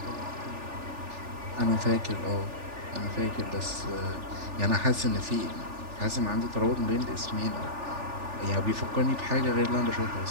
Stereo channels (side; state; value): left; late; 3.4 ms